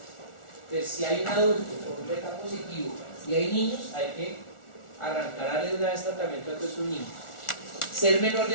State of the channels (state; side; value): late; right; 1.4 ms